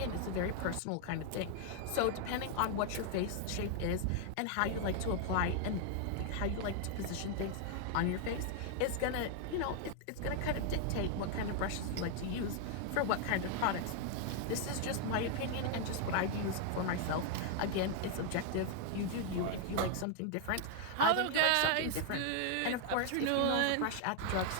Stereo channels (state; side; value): different; both; correlation 0.00